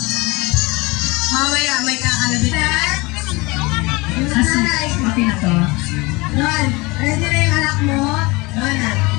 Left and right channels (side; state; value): right; quieter; 24.4 dB